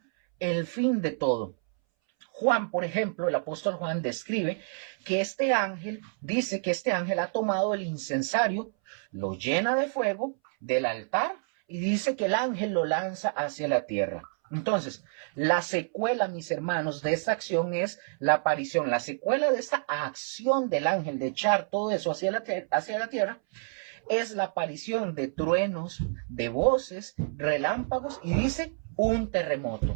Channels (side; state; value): left; silent; 59 dB below the other